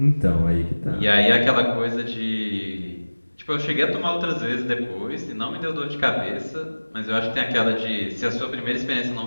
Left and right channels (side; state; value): both; inverted; correlation -1.00